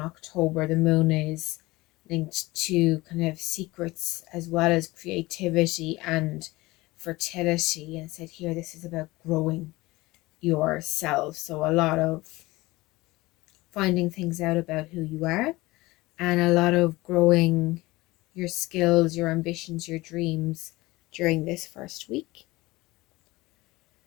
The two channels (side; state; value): right; quieter; 20.5 dB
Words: The moon is linked to kind of secrets as well as creativity and fertility. And said here, this is about growing yourself. So a lot of finding things out about who you are, and a lot of growing your skills, your ambitions, your dreams during this first week.